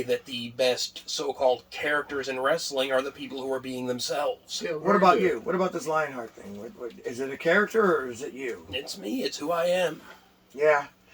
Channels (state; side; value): identical; both; correlation 1.00